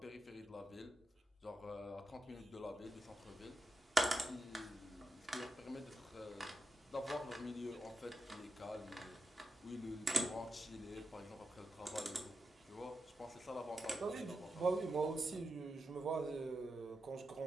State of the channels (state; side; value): normal; both; correlation 0.88